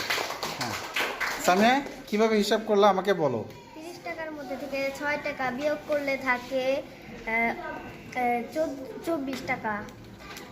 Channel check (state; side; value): identical; both; correlation 1.00